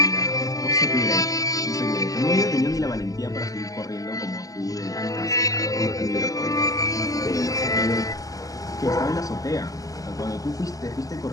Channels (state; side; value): late; right; 0.17 ms